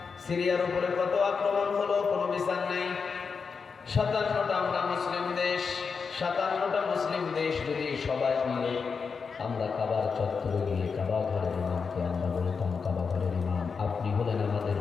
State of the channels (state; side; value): quieter; right; 5.4 dB